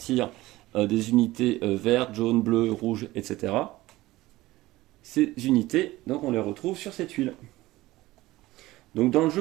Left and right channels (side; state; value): left; quieter; 18.0 dB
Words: des unités vertes, jaunes, bleues, rouges, etc. Ces unités, donc on les retrouve sur cette tuile. Donc dans le jeu,